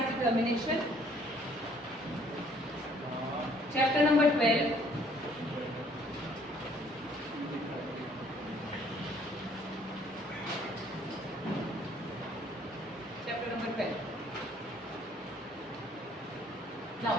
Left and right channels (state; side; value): normal; both; correlation 0.61